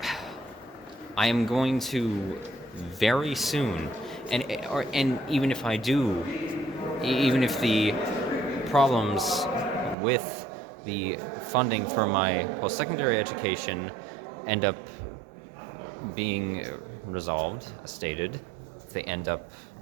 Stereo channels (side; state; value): left; drops out; at 10.0 s